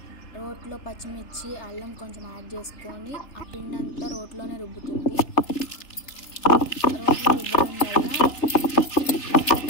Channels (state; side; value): late; right; 3.3 ms